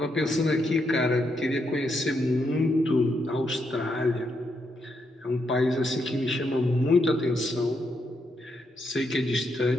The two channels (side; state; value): both; normal; correlation 0.79